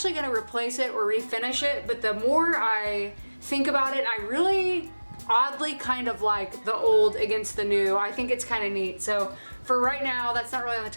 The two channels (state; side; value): inverted; both; correlation -1.00